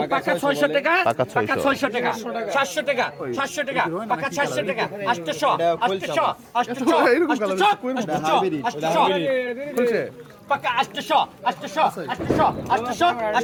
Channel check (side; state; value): both; identical; correlation 1.00